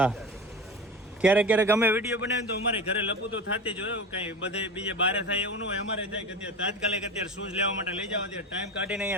ક્યારેક ક્યારેક અમે વિડીયો બનાવીએ તો અમારે ઘરે લપુ તો થતી જ હોય કઈ બધે બીજે બારે થાય એવું ન હોય. અમારે થાય કે અત્યારે તાત્કાલિક અત્યારે શૂઝ લેવા માટે લઈ જાવ અત્યારે ટાઈમ કાઢીને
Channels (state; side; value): normal; both; correlation 0.29